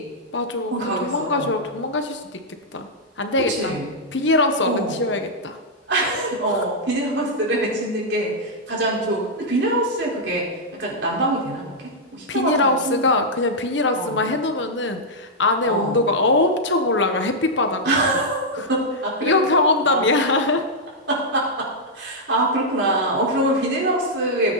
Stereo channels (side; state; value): both; normal; correlation -0.05